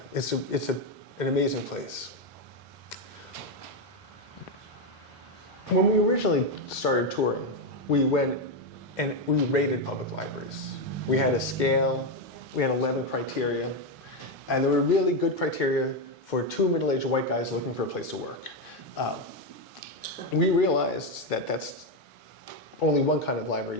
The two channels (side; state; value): both; normal; correlation 0.07